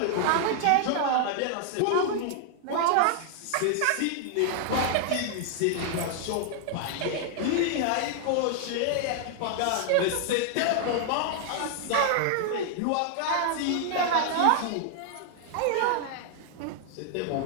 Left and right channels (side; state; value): both; different; correlation 0.00